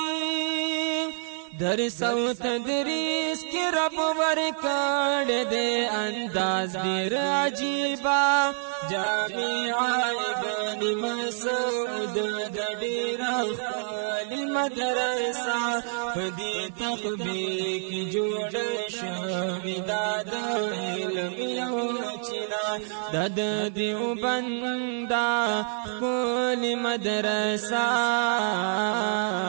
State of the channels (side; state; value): left; silent; digital silence